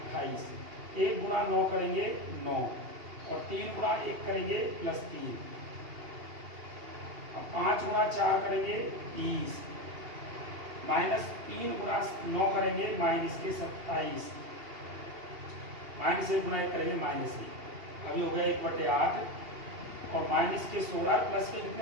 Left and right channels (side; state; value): left; late; 2.8 ms